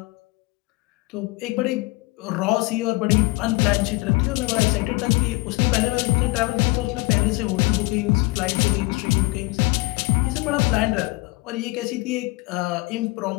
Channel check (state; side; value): quieter; right; 24.1 dB